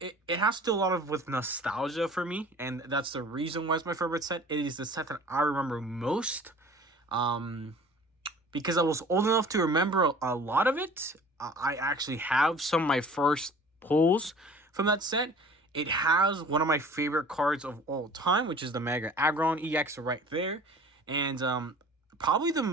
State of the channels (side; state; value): both; normal; correlation 0.46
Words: it has to do a lot of with nostalgia for me, and that's the reason why it's my favorite set. It is the set that I remember most. Because I was old enough to remember a lot of it. I actually have some of my first pulls from that set. It has one of my favorite cards of all time, which is the Mega Aggron EX right there. And probably